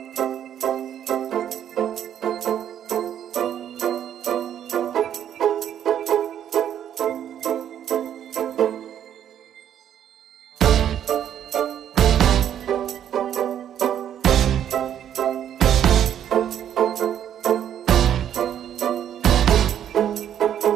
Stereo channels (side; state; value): left; quieter; 10.0 dB